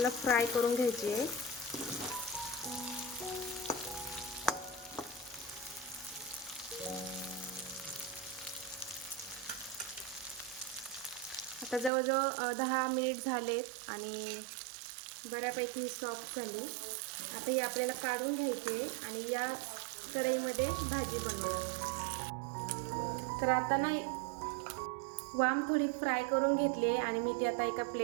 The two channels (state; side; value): drops out; left; at 11.9 s